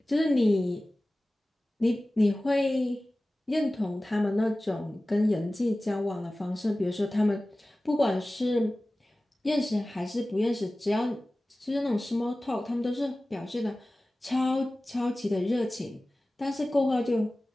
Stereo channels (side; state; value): both; normal; correlation 0.97